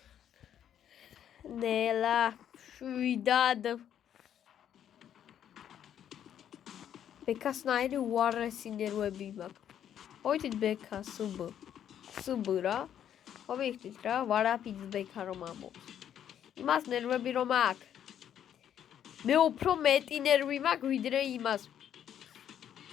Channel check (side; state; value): right; quieter; 9.8 dB